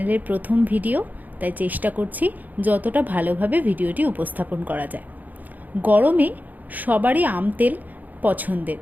প্রথম ভিডিও, তাই চেষ্টা করছি যতটা ভালোভাবে ভিডিওটি উপস্থাপন করা যায়। গরমে সবারই আম তেল পছন্দের।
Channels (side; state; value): left; late; 0.082 ms